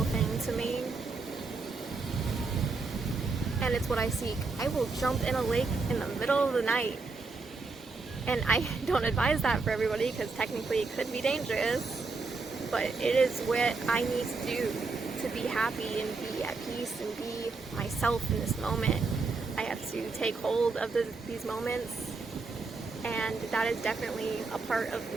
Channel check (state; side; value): quieter; left; 4.1 dB